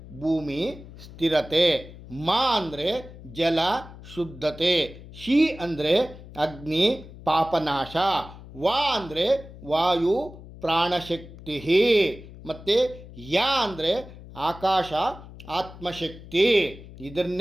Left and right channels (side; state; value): left; noise; hum, 17 dB below the sound